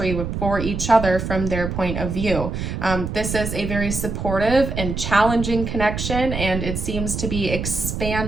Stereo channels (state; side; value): noise; right; rumble, 4 dB below the sound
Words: for each other from their point of view. This is a very supportive and challenging connection, and it seems to be